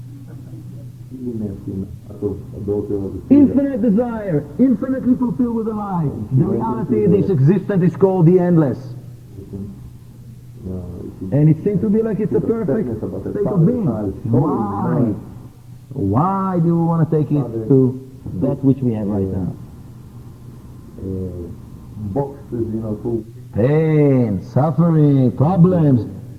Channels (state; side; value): identical; both; correlation 1.00